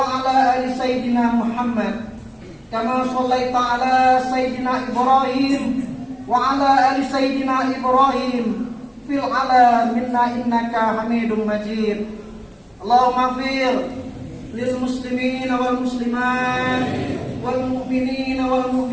ala ali sayyidina Muhammad kama shallaita ala sayyidina Ibrahim wa ala ali sayyidina Ibrahim fil alamin innaka Hamidum Majid. Allahumma fir lil muslimina wal muslimat wal mu'minina wal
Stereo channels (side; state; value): both; identical; correlation 1.00